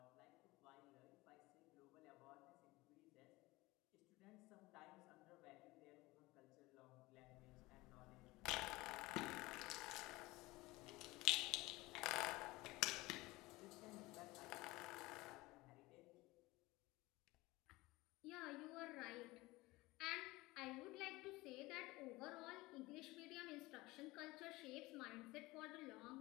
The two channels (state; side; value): quieter; right; 20.8 dB